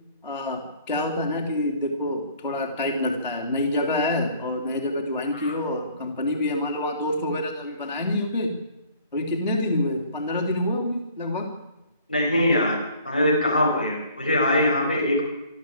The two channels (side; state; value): both; inverted; correlation -0.55